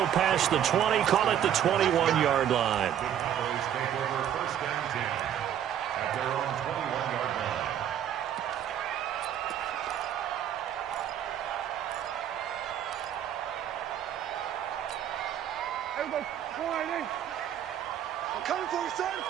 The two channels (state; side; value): quieter; left; 10.1 dB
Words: past the 20, call it the 21-yard line. The Cowboys take over first and 10 at their own 21-yard line. Everybody, come on, Nate. I'm coming for you, son.